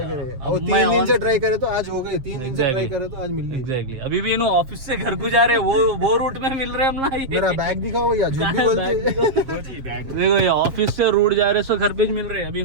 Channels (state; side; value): late; left; 7.5 ms